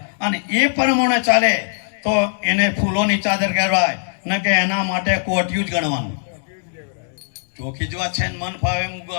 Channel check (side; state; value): right; silent; digital silence